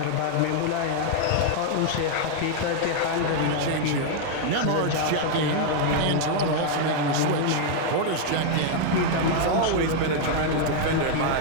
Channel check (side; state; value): both; different; correlation 0.00